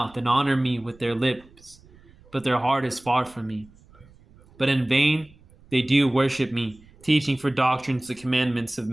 and honor me with their lips, but their heart is far from me. But in vain they do worship me, teaching for doctrines the commandments of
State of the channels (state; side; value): noise; right; rumble, 26 dB below the sound